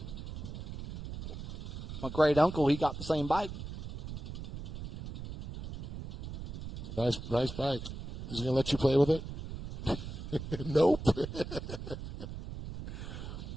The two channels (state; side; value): noise; right; rumble, 8 dB below the sound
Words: My great uncle, he got the same bike. Nice bike. Is he going to let you play with it? Nope.